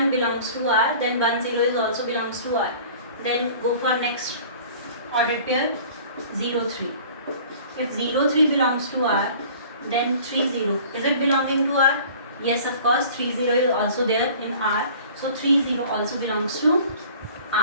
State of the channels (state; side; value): inverted; both; correlation -0.47